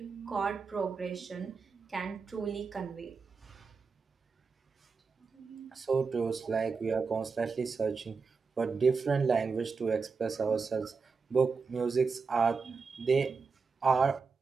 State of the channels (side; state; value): left; quieter; 5.0 dB